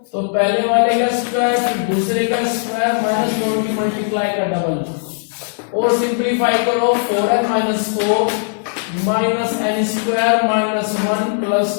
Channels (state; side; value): silent; right; digital silence